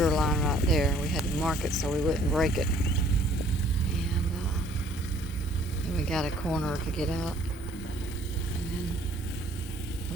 line right there. We had to mark it so we wouldn't break it. And then we got a corner to get out. And then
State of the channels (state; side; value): normal; both; correlation 0.58